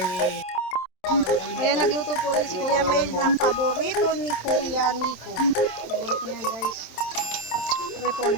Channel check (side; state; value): right; late; 27 ms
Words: Ayan, nagluto po ni si Kuya Mel ng paborito ni Kuya Nico. Paborito niyan guys.